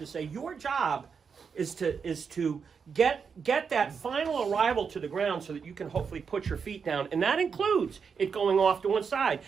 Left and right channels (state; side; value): quieter; left; 6.1 dB